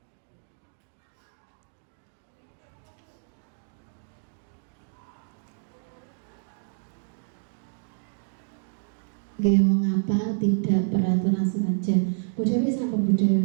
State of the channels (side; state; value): left; silent; 59 dB below the other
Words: Oke, mengapa tidak peraturan saja? Bu Dewi sampun Bu